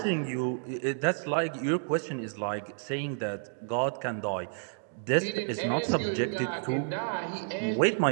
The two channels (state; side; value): silent; left; digital silence